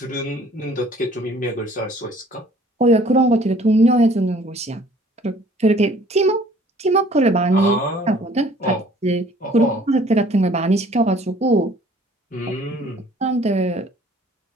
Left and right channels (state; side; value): normal; both; correlation 0.55